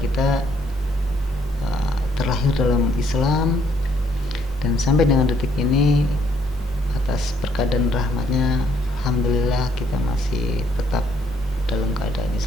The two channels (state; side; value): normal; both; correlation 0.69